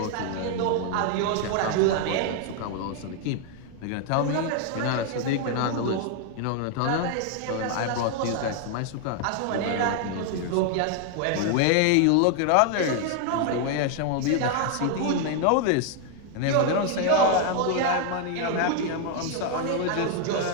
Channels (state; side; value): different; both; correlation 0.00